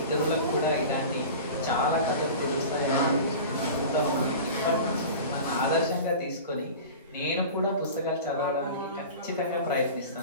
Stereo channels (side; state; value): both; inverted; correlation -0.35